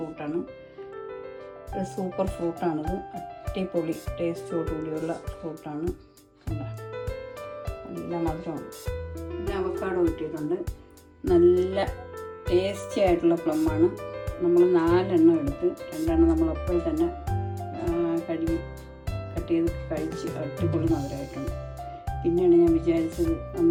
ഒരു സൂപ്പർ ഫ്രൂട്ടാണിത്, അടിപൊളി ടേസ്റ്റോടുകൂടിയുള്ള ഫ്രൂട്ടാണ്. നല്ല മധുരമാണ്. പിന്നെ അവക്കാഡോ കിട്ടിയിട്ടുണ്ട്, നല്ല ടേസ്റ്റി ആയിട്ടുള്ള പ്ലമ്മാണ്. നമ്മൾ 4 എണ്ണം എടുത്ത് 2 എണ്ണം നമ്മൾ അപ്പോൾ തന്നെ കട്ട് ചെയ്ത് കഴിച്ച് അടിപൊളി മധുരമായിട്ടുണ്ട്. പിന്നെയാണ് ഞാൻ വിചാരിച്ചത്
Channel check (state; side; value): identical; both; correlation 1.00